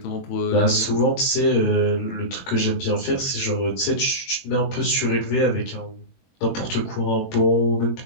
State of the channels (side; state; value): right; late; 21 ms